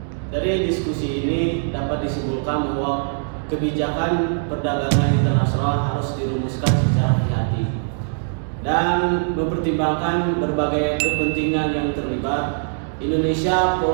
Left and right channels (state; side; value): silent; left; digital silence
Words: Dari diskusi ini dapat disimpulkan bahwa kebijakan perdagangan internasional harus dirumuskan secara hati-hati dan mempertimbangkan berbagai kepentingan yang terlibat. Indonesia